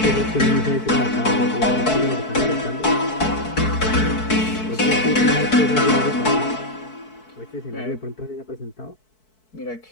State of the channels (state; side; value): late; right; 4.6 ms